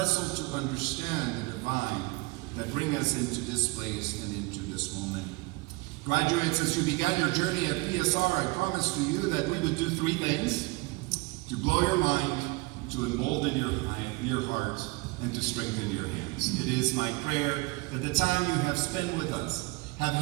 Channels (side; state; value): left; quieter; 25.1 dB